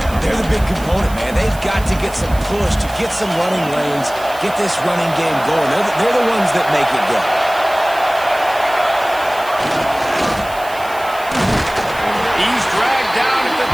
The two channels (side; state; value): right; noise; hiss, 18 dB below the sound